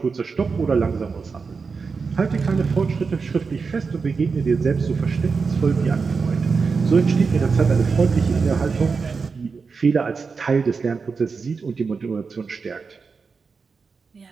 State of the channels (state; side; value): quieter; left; 5.0 dB